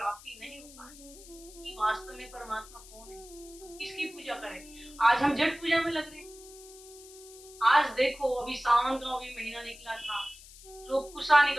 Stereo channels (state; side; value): noise; left; hiss, 19 dB below the sound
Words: नहीं हो पा रही कि वास्तव में परमात्मा कौन है, किसकी पूजा करें। आज हम जड़ पूजा में लग रहे हैं। आज देखो अभी सावन का अभी महीना निकला था, लोग कुशा